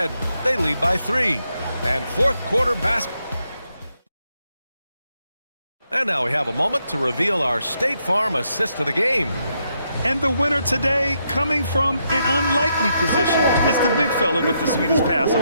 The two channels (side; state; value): both; inverted; correlation -0.79